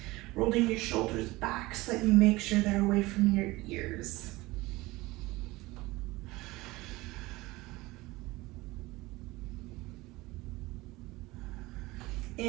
Rolling your shoulders back so that you make sure they're away from your ears.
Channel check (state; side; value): quieter; left; 20.6 dB